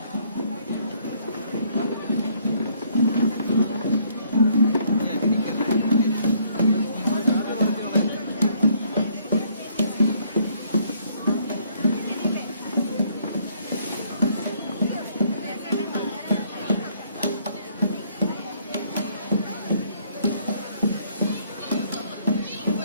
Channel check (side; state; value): both; inverted; correlation -0.65